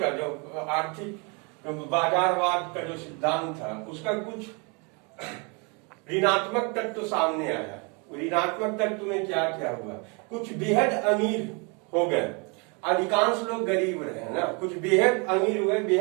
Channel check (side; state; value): left; quieter; 32.5 dB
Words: का जो आर्थिक बाजारवाद का जो सिद्धांत था उसका कुछ ऋणात्मक तत्व सामने आया। ऋणात्मक तत्व में क्या क्या हुआ, कुछ बेहद अमीर हो गए, अधिकांश लोग गरीब रहे ना। कुछ बेहद अमीर हुए,